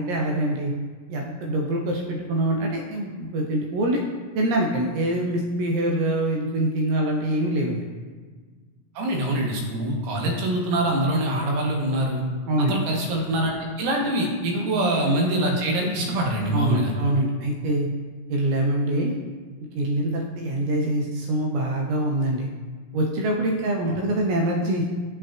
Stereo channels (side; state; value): left; late; 17 ms